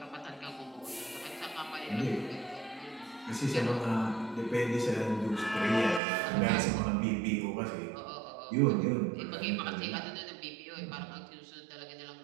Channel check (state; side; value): drops out; left; at 6.0 s